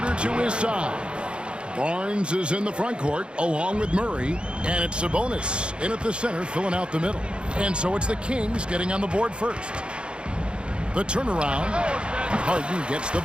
to his side. Barnes is in the front court along with Murray, and it's Sabonis in at the center filling out the middle. And so it's the Kings getting on the board first. The turnaround, Harden gets the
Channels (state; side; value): late; left; 0.055 ms